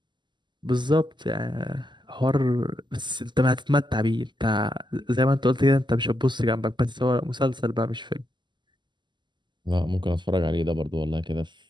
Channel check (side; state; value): left; late; 0.22 ms